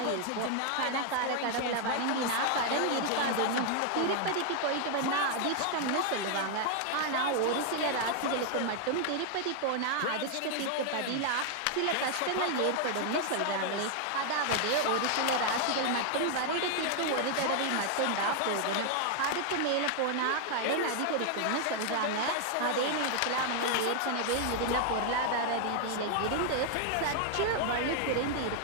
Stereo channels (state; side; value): different; both; correlation 0.00